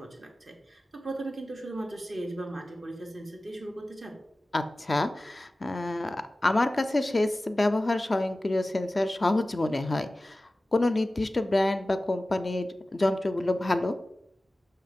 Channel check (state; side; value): normal; both; correlation 0.96